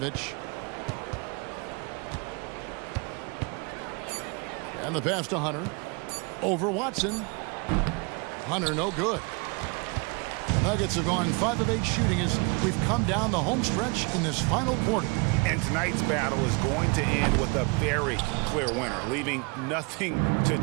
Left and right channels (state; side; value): quieter; left; 30.4 dB